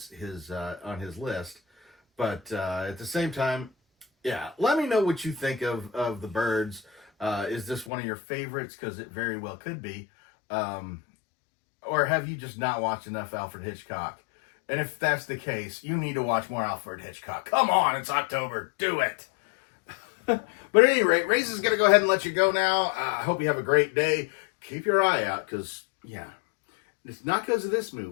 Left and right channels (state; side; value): drops out; right; at 7.9 s